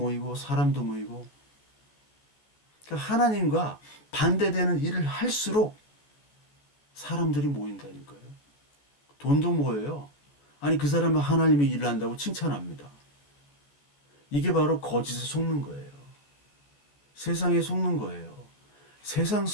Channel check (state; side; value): late; right; 14 ms